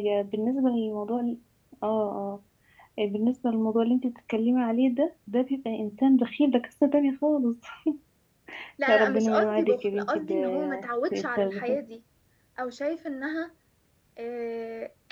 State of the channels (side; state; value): both; identical; correlation 1.00